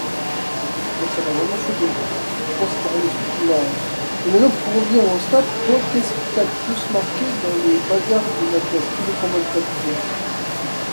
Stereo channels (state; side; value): inverted; both; correlation -1.00